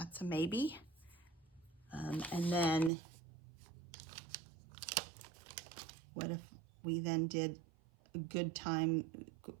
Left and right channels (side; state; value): left; drops out; at 2.9 s